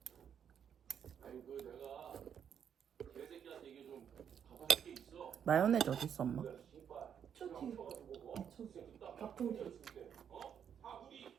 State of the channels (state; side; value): quieter; left; 8.2 dB